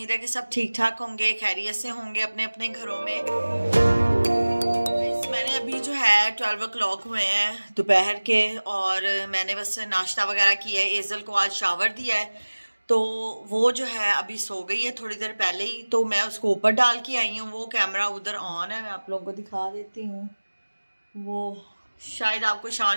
है कि सब ठीक ठाक होंगे, खैरियत से होंगे अपने अपने घरों में। मैंने अभी जो है 12 o'clock हुए हैं दोपहर के, और मैंने बस नाश्ता वगैरह किया है। एजल को आज शावर दिया है तो वो जो है अभी सो गई है थोड़ी देर पहले ही, तो मैं उसको ऊपर डाल के आई हूँ। वो कैमरा उधर ऑन है, मैं आप लोगों को दिखा देती हूँ। वो शायद आपको शां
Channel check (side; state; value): both; inverted; correlation -1.00